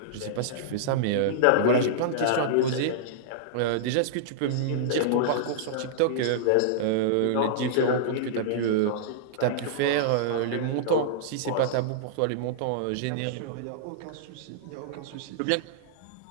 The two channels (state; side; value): different; both; correlation -0.02